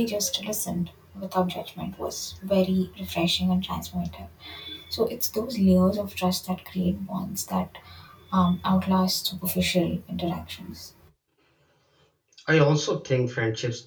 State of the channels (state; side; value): identical; both; correlation 1.00